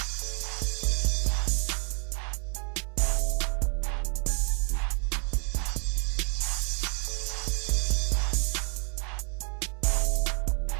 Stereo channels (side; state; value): left; quieter; 38.2 dB